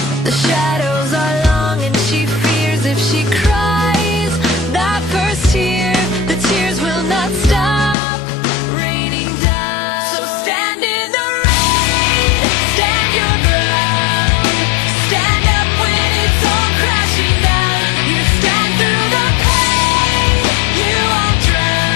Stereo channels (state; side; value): drops out; right; at 8.0 s